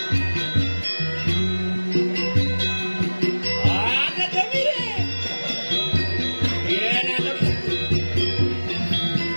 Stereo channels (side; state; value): both; inverted; correlation -1.00